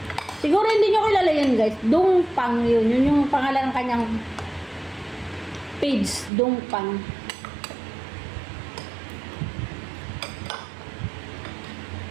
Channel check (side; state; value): left; drops out; at 6.3 s